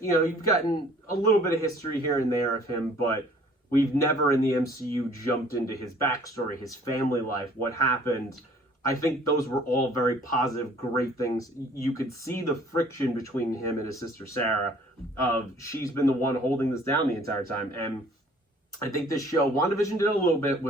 you've gotten a little bit of history here and there of him, but we've never in the MCU jumped into his backstory, his family life, what happened. I think those were all very positive, great things. You could see the friction between him and his sister Sarah of she's been the one holding this down the entire time. And I think this show, WandaVision did a little bit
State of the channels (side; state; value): both; normal; correlation 0.54